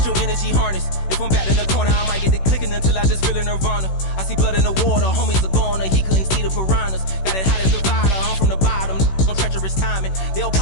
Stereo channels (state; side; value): late; right; 16 ms